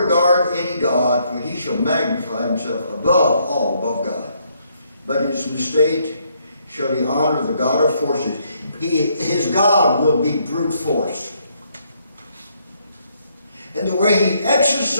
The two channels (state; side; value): inverted; both; correlation -0.72